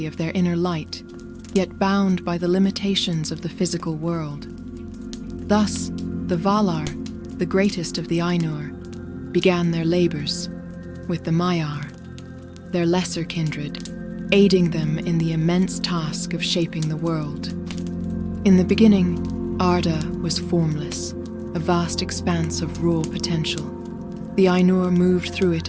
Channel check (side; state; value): both; identical; correlation 1.00